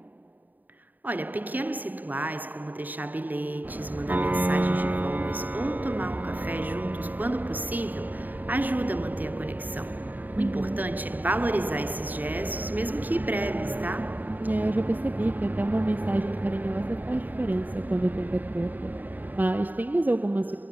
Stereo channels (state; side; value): late; left; 0.086 ms